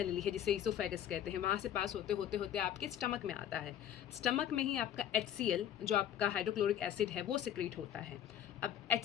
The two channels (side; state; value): right; quieter; 10.4 dB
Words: है, जिसे ईसोफेगस कहते हैं, वहाँ से पास होते होते होते आपके स्टमक में आता है। स्टमक में ही आपका HCl, जो आपका हाइड्रोक्लोरिक एसिड है, वो सिक्रीट होता है। अब